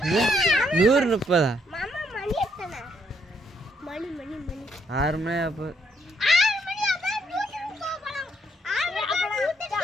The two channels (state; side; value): normal; both; correlation 0.72